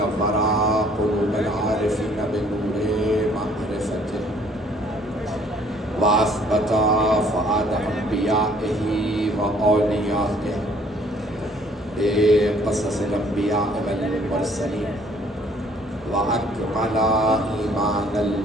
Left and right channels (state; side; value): normal; both; correlation 0.59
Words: قلوب العارفين بنور معرفته وأثبت فؤاد أنبيائه وأوليائه بقصص الأنبياء والمرسلين وأكمل إيمان